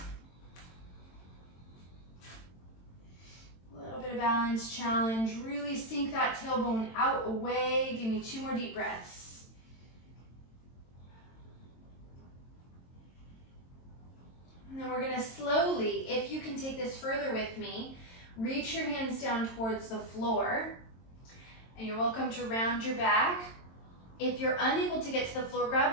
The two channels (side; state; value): right; late; 22 ms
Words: A little bit of balance challenge. Really sink that tailbone out, away. Give me 2 more deep breaths. And then we're gonna slowly, if you can take this further with me, reach your hands down towards the floor, and you're welcome to round your back. If you're unable to get to the floor,